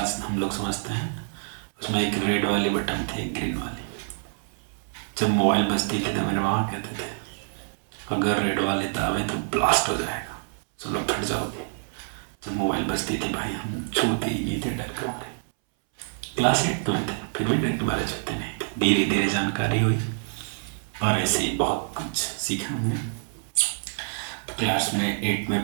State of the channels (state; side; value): silent; left; 60 dB below the other